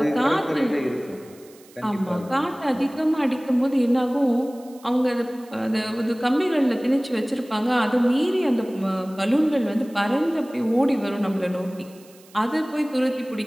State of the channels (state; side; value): noise; right; hiss, 26 dB below the sound